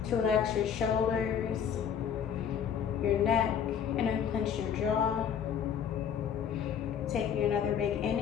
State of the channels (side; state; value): right; quieter; 8.0 dB